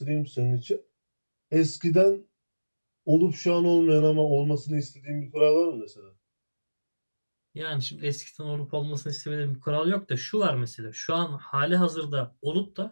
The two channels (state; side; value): inverted; both; correlation -1.00